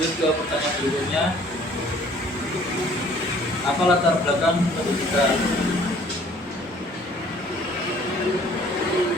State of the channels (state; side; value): normal; both; correlation 0.56